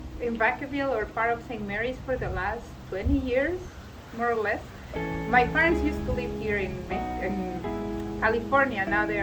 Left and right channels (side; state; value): both; identical; correlation 1.00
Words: in Vacaville or part of St. Mary's for the last 20 years, more or less. My parents used to live here in California. Now they